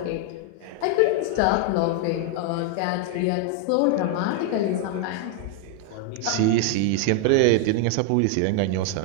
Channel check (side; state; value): both; different; correlation 0.00